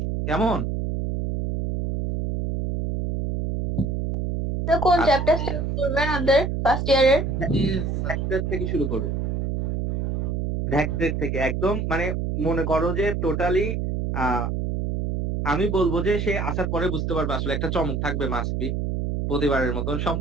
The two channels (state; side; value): noise; right; hum, 1 dB below the sound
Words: কেমন? তো কোন আচ্ছা। চ্যাপ্টার স্টার্ট করবেন ওদের ফার্স্ট ইয়ারের? ভ্যাক্টর থেকে শুরু করবো, ভ্যাক্টর থেকে একদম, মানে মনে করো যে টোটালি আমি বলবো যে সে আসার পরে বুঝতে পারবে আসলে একটা চমক থাকবে মাস্টবি। প্রতিবারের মতন